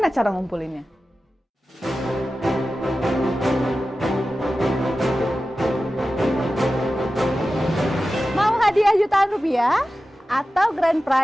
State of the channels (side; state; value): both; normal; correlation 0.94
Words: cara ngumpulinnya? Mau hadiah jutaan rupiah atau grand